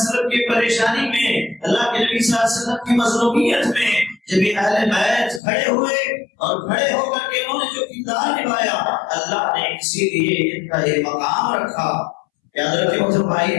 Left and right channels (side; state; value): right; drops out; at 5.4 s